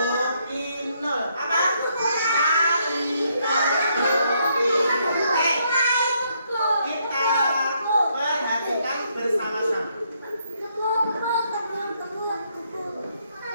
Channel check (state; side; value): inverted; both; correlation -0.73